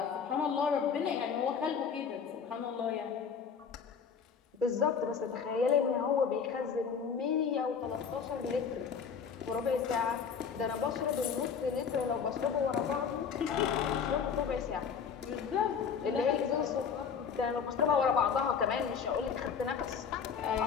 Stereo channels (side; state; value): right; quieter; 6.5 dB